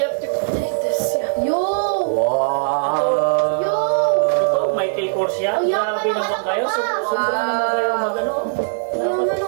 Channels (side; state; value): left; silent; 60 dB below the other